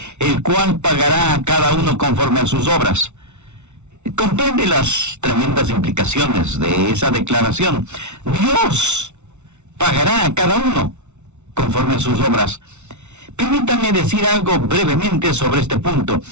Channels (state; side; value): late; left; 0.82 ms